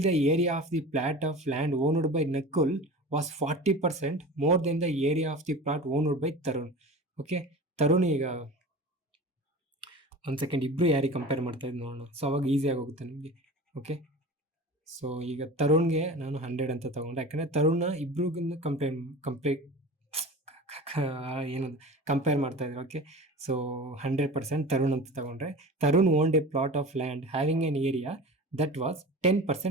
the area of the plot of land owned by Nakul was 40% more than the area of the plot owned by Tarun. Okay, Tarun ಈಗ ಒಂದು ಸೆಕೆಂಡ್ ಇಬ್ರು ಯಾರಿಗೆ ಕಂಪೇರ್ ಮಾಡ್ತಾ ಇದ್ದು ನೋಡೋಣ. ಸೊ ಅವಾಗ ಈಸಿಯಾಗಿ ಹೋಗುತ್ತೆ ನಿಮಗೆ. ಓಕೆ, ಸೊ ಈಗ ತರುಣ್ಗೆ ನಾನು 100 ಅಂತ ತಗೊಂಡೆ, ಯಾಕಂದರೆ ತರುಣ ಇಬ್ರಿಗೂ ಕಂಪೇರ್ ಮಾಡ್ತಾ ಇದ್ರು. ಓಕೆ, ಸೊ 100% ತರುಣ್ ಅಂತ ತಗೊಂಡ್ರೆ Tarun owned a plot of land having an area that was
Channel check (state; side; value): normal; both; correlation 0.35